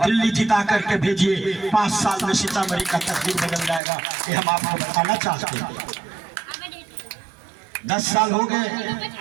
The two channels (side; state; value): left; drops out; at 3.8 s